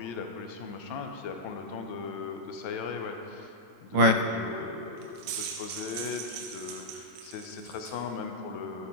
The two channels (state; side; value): late; left; 23 ms